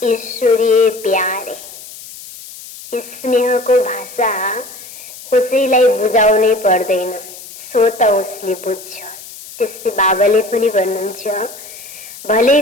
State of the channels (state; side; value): noise; left; hiss, 15 dB below the sound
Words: ईश्वरीय प्यार है। स्नेह को भाषा कसैलाई बुझाउनै पर्दैन, स्वत उसले बुझ्छ। त्यस्तै बाबाले पनि भन्नुहुन्छ, भले